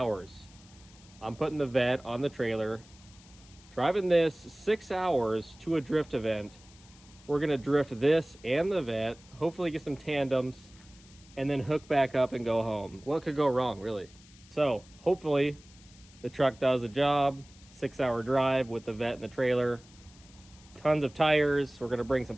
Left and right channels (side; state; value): left; noise; hiss, 25 dB below the sound